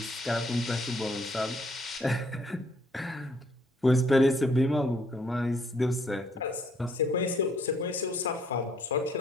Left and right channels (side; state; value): both; normal; correlation 0.66